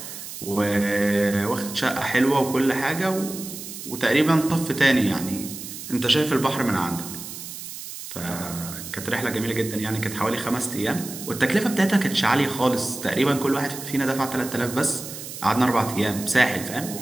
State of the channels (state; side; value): noise; right; hiss, 10 dB below the sound